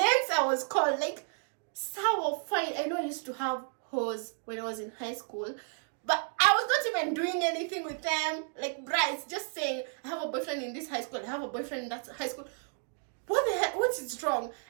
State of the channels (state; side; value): silent; left; 56 dB below the other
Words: I was called, like, sour fine. I know I used to have hoes when I was in high school, but I was not even doing anything with them. Like, Bryce, just saying, I have a boyfriend in this high school, I have a boyfriend in that high school. What the heck? What is wrong?